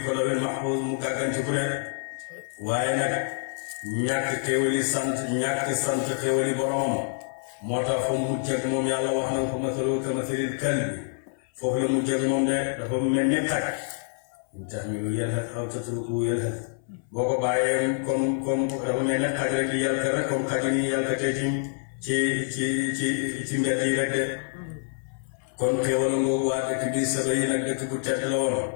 ko lawil mahfuz mu gàgganti ku ne waaye nag ñàkk sant xéewali boromam moo tax fa mu jëg moom yàlla wax na ko masalu kamasalil kalbi foofu la mu jëg moom de dafa mel ni xaj in tahmilu yalhas aw tatrukuhu yalhas boo ko bàyyee comme dafa mel ne xaj rek di yàlka rek comme xaj ni yàlkatee ci mbedd yi rek de kon xéewal ngoogu waa dëkk bi saba yi nag dëkk bu tedd la woon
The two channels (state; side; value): silent; right; 60 dB below the other